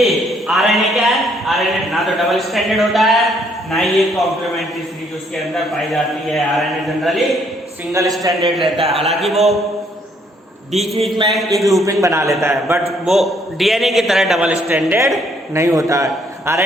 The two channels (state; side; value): normal; both; correlation 0.68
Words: आरएनए क्या है? आरएनए ना तो डबल स्टैंडर्ड होता है ना ही ये कॉम्प्लीमेंट्री सीरीज उसके अंदर पाई जाती है। आरएनए जनरली सिंगल स्टैंडर्ड रहता है, हालांकि वो बीच में एक लूपिंग बना लेता है, बट वो डीएनए की तरह डबल स्टैंडर्ड नहीं होता है।